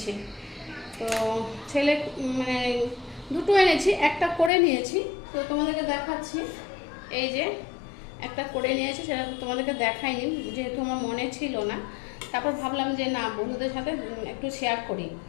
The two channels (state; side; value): drops out; right; at 4.5 s